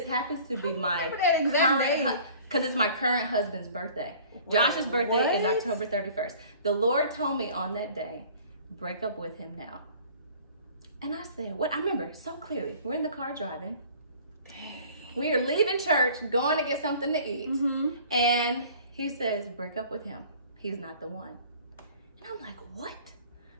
happens to be my current, because it's my current husband's birthday. Josh's birthday is October 31st. The Lord told me on that day, break up with him now. And I said, what? I remember so clearly. We're in the car driving. We are leaving church, going to get something to eat. And he says, break up with him. He's not the one. And I'm like, what?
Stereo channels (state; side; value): inverted; both; correlation -0.49